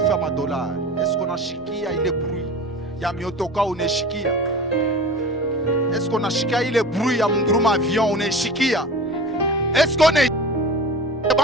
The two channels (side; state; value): both; normal; correlation 0.35